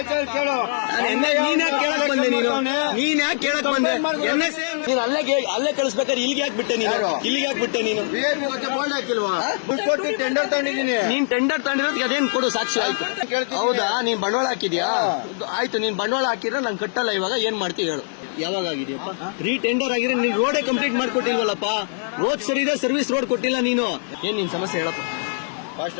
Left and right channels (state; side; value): silent; right; digital silence